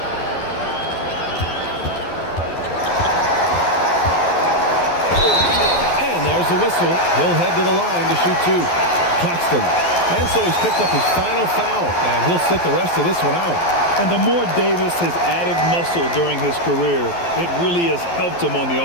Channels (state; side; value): late; right; 12 ms